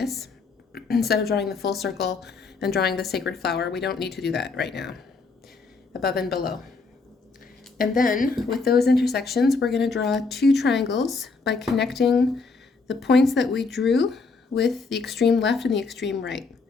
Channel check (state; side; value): quieter; right; 4.3 dB